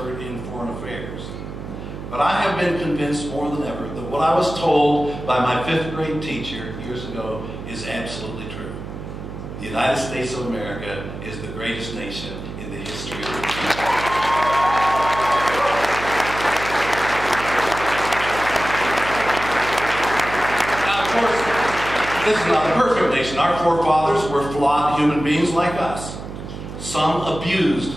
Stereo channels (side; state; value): right; noise; hum, 10 dB below the sound